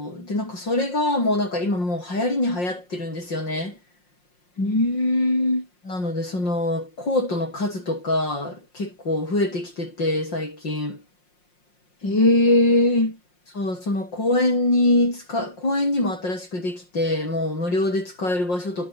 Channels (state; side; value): late; right; 5.6 ms